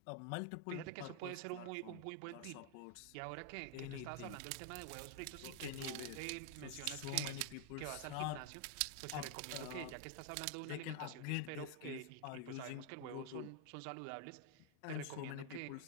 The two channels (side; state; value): both; different; correlation 0.00